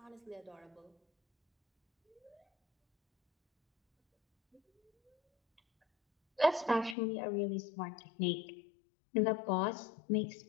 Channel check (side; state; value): right; drops out; at 7.0 s